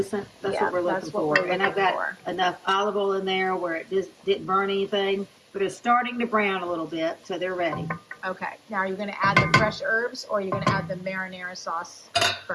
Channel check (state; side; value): identical; both; correlation 1.00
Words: That's Yeah, what we're looking that's what for. we're And I've looking got for. enough olive oil in there where it just didn't burn anything, but it's starting to brown a little bit, so they're ready. Okay. Now, are you going to add the fresh herbs, or are you going to add the marinara sauce